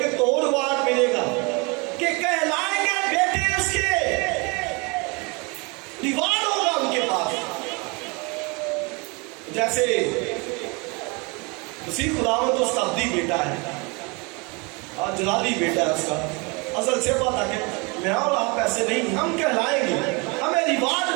تو ریوارڈ ملے گا کہ کہلائیں گے بیٹے اس کے، ریوارڈ ہوگا ان کے پاس. جیسے مسیح خداوند تو اس کا ابدی بیٹا ہے، جلالی بیٹا ہے اس کا، اصل سے پتا کہ میں اور آپ ایسے نہیں، ہم کہلائیں گے، ہمیں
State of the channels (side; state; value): left; quieter; 29.1 dB